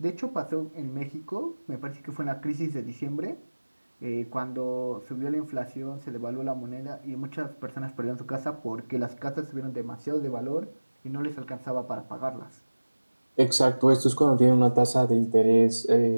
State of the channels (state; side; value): inverted; both; correlation -1.00